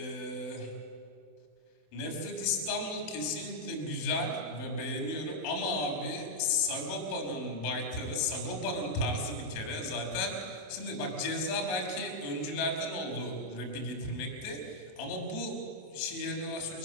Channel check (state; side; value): late; right; 27 ms